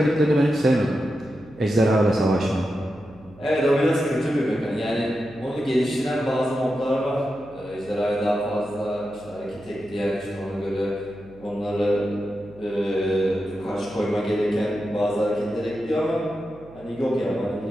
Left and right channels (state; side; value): noise; right; hum, 23 dB below the sound